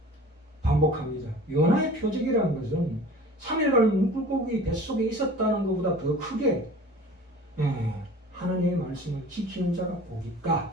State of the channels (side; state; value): both; normal; correlation 0.43